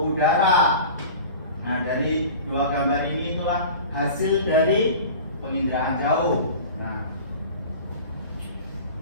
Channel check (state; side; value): inverted; both; correlation -0.38